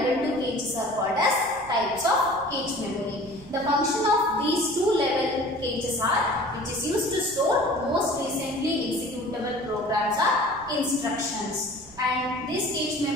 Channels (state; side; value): noise; right; rumble, 22 dB below the sound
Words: 2 caches are called as types of cache memory. The function of these two level caches are which is used to store most recently executable programs or instructions. And this cache